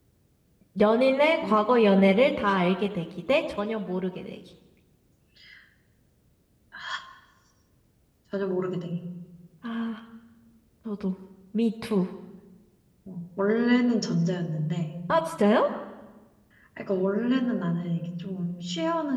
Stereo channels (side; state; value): both; identical; correlation 1.00